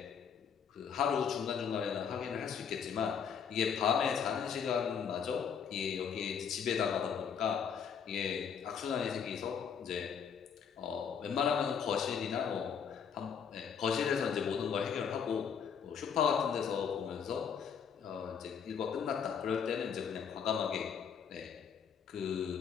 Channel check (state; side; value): quieter; right; 7.2 dB